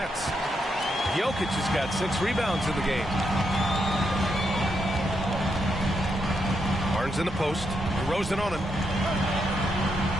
Jokic has got 6 rebounds in the game. Barnes in the post. DeRozan on him.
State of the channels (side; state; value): both; normal; correlation 0.81